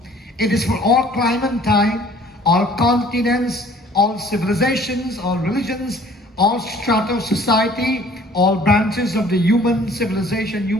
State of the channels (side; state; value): both; normal; correlation 0.54